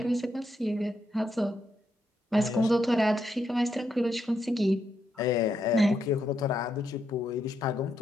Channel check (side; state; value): both; normal; correlation 0.80